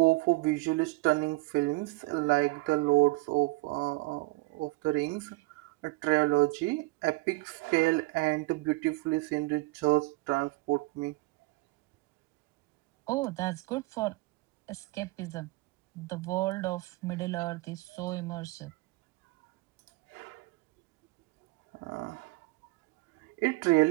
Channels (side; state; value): left; quieter; 22.6 dB